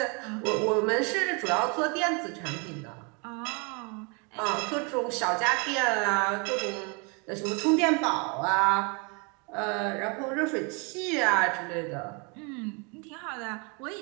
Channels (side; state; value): left; quieter; 32.7 dB